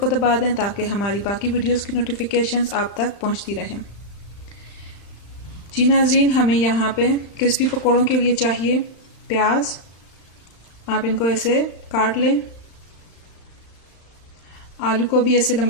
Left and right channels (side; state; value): right; late; 35 ms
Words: दबा दें ताकि हमारी बाकी वीडियोस की नोटिफिकेशंस आप तक पहुंचती रहें। जी नाजरीन, हमें यहाँ पे क्रिस्पी पकोड़ों के लिए चाहिए प्याज। आप इनको ऐसे काट लें। आलू को भी ऐसे